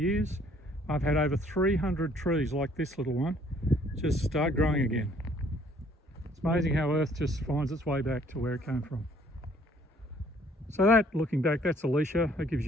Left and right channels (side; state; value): both; normal; correlation 0.61